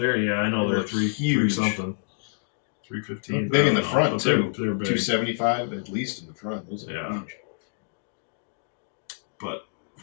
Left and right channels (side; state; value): right; silent; digital silence